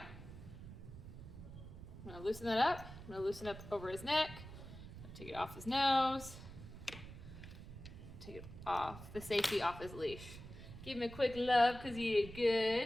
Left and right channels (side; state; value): right; noise; rumble, 13 dB below the sound